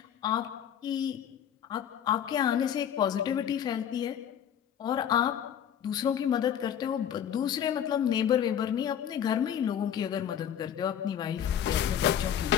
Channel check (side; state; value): right; quieter; 9.3 dB